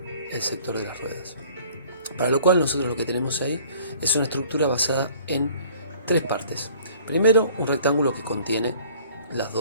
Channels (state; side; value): inverted; both; correlation -0.53